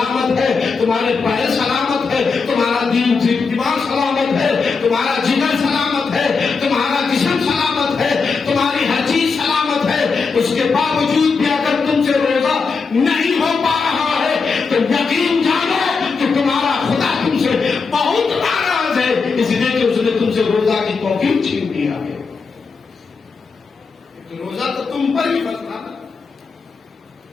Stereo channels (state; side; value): quieter; right; 4.9 dB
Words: ہے، تمہارے پیر سلامت ہے، تمہارا دماغ سلامت ہے، تمہارا جگر سلامت ہے، تمہارا جسم سلامت ہے، تمہاری ہر چیز سلامت ہے، اس کے باوجود بھی اگر تم سے روزہ نہیں ہو پا رہا ہے تو یقین جانو کہ تمہارا خدا تم سے بہت ناراض ہے، اس لیے کہ اس نے تم سے روزہ کی توفیق چھین لیا ہے. تو روزہ تو تم پر ہی فرض تھا،